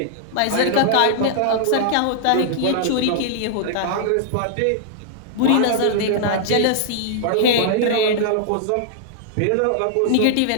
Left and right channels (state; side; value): different; both; correlation -0.01